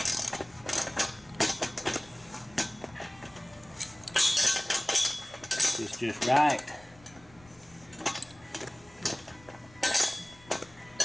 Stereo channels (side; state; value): left; noise; rumble, 25 dB below the sound